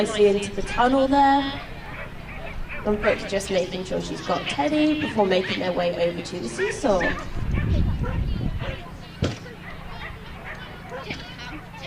into the tunnel there. And Brooke's just making sure she's got Teddy before making their way over to the seesaw.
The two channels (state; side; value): identical; both; correlation 1.00